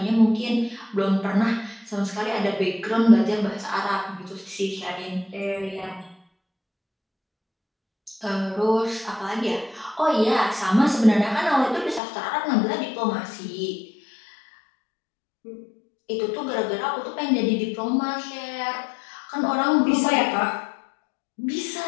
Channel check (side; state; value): right; drops out; at 12.0 s